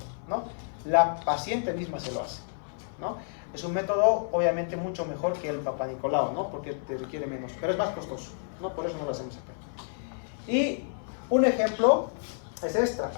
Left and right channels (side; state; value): right; silent; 56 dB below the other